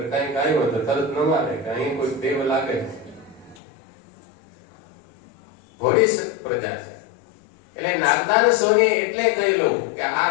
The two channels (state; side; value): drops out; right; at 3.6 s